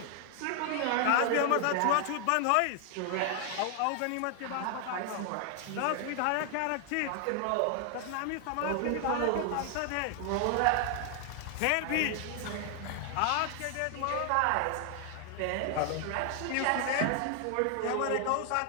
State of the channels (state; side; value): different; both; correlation 0.00